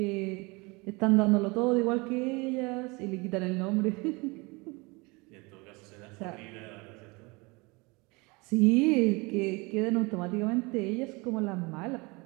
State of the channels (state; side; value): quieter; left; 26.5 dB